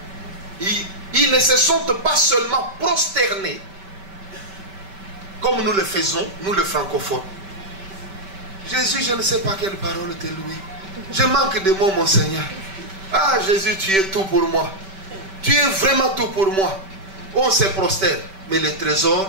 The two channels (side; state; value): left; late; 5.2 ms